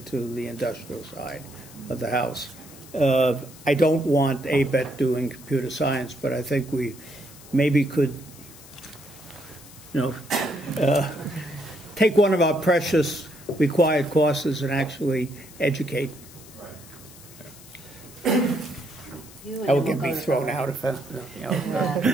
the industrial side of the house. I don't want ABET doing computer science, but I think we maybe could, take one of our precious required courses and actually educate. That would get me thrown out if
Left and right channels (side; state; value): left; noise; hiss, 20 dB below the sound